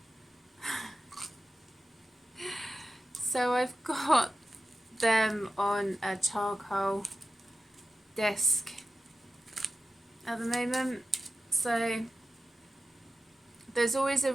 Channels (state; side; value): normal; both; correlation 0.92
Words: So I've got them on a charcoal disc at the moment. So there's always a